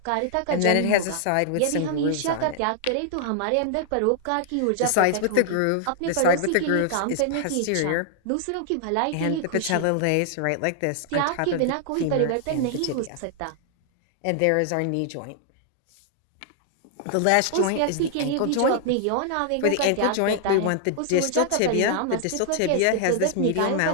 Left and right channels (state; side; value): different; both; correlation 0.00